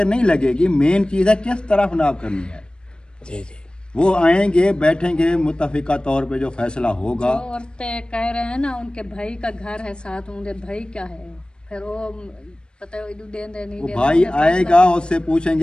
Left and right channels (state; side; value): late; right; 0.052 ms